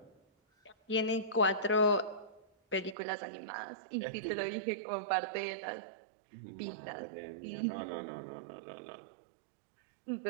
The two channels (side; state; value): left; drops out; at 3.0 s